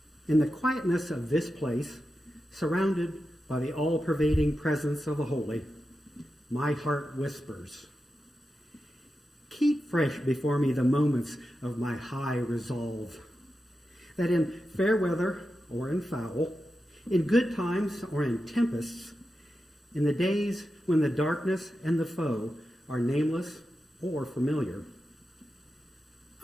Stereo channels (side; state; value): both; normal; correlation 0.90